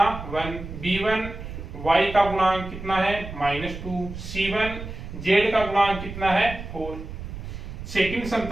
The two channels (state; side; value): noise; right; rumble, 10 dB below the sound